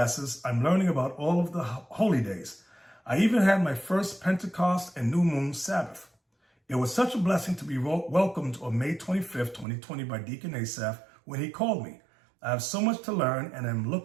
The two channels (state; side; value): drops out; left; at 9.7 s